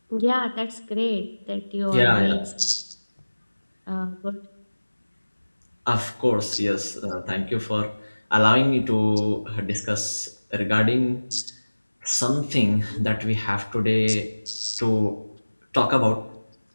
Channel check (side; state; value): both; inverted; correlation -1.00